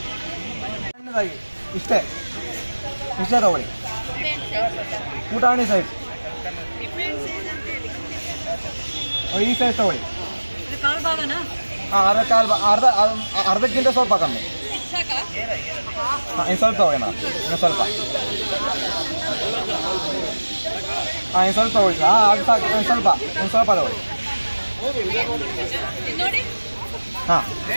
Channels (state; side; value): inverted; both; correlation -1.00